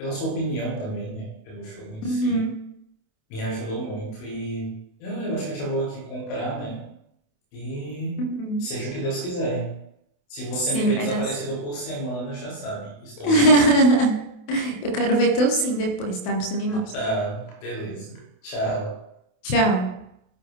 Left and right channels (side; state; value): right; late; 28 ms